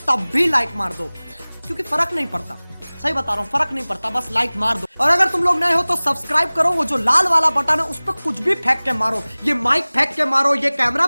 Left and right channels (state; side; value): inverted; both; correlation -1.00